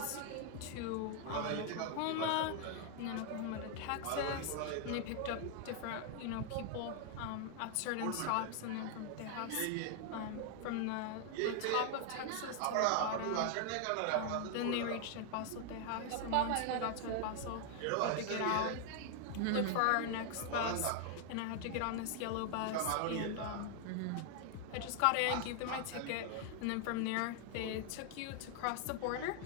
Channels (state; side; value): different; both; correlation 0.00